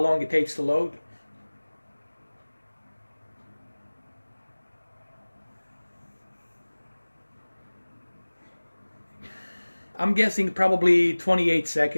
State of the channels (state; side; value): inverted; both; correlation -1.00